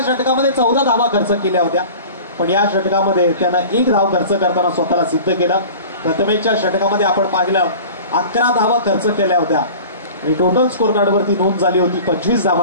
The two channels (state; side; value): inverted; both; correlation -0.40